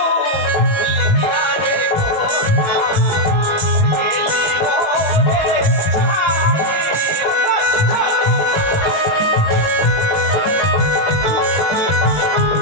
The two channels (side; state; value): right; late; 19 ms